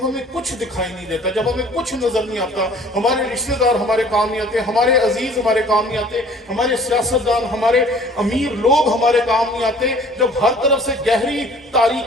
ہمیں کچھ دکھائی نہیں دیتا، جب ہمیں کچھ نظر نہیں آتا، ہمارے رشتہ دار ہمارے کام نہیں آتے، ہمارے عزیز ہمارے کام نہیں آتے، ہمارے سیاستدان، ہمارے امیر لوگ ہمارے کام نہیں آتے، جب ہر طرف سے گہری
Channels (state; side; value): normal; both; correlation 0.51